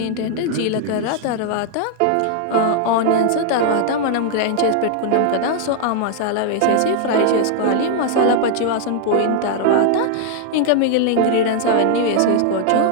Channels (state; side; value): different; both; correlation 0.00